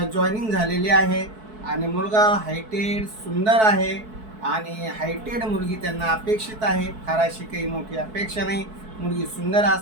जॉईनिंग झालेली आहे आणि मुलगा हायटेड सुंदर आहे आणि हायटेड मुलगी त्यांना अपेक्षित आहे। फार अशी काही मोठी अपेक्षा नाही। मुलगी सुंदर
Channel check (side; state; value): left; late; 4.6 ms